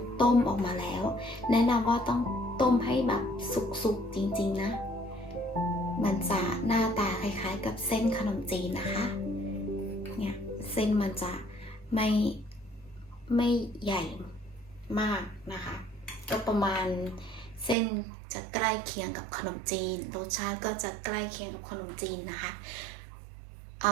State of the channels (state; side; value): drops out; left; at 17.8 s